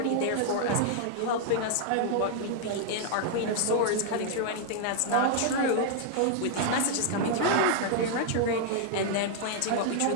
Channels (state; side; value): different; both; correlation -0.01